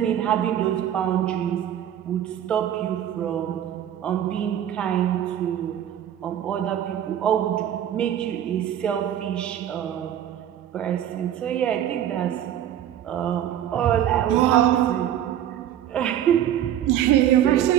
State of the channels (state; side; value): quieter; left; 10.8 dB